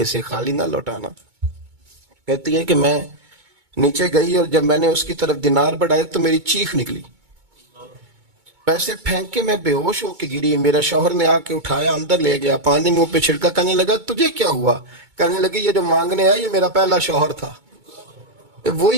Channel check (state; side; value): late; left; 2.2 ms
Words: خالی نہ لوٹانا. کہتی ہے کہ میں نیچے گئی اور جب میں نے اس کی طرف دینار بڑھائے تو میری چیخ نکلی، پیسے پھینک کے میں بے ہوش ہو کے گری. میرا شوہر نے آ کے اٹھایا، اندر لے گیا، پانی منہ پہ چھڑکا. کہنے لگا تجھے کیا ہوا؟ کہنے لگی یہ جو مانگنے آیا یہ میرا پہلا شوہر تھا،